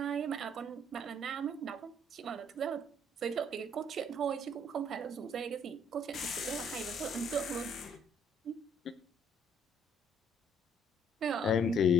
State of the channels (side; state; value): both; normal; correlation 0.63